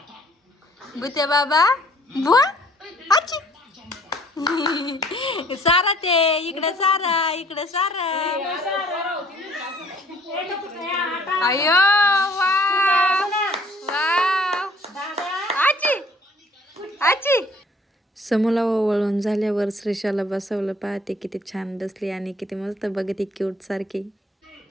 बुते बाबा बुवा आची. सारा ते इकडे सारा इकडे सारा. अयो वा वा आची आची. समोला वळून झाल्यावर श्रीषाला बसवलं. पाहते किती छान बसली आणि किती मस्त बघते क्यूट सारखी.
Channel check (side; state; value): both; normal; correlation 0.58